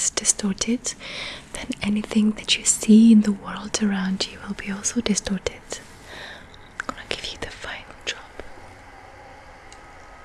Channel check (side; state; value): both; identical; correlation 1.00